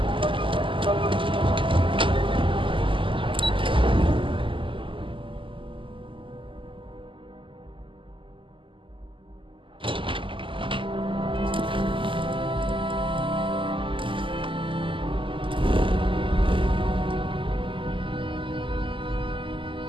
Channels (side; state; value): left; late; 0.25 ms